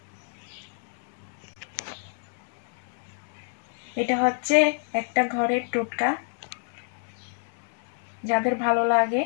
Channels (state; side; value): silent; right; digital silence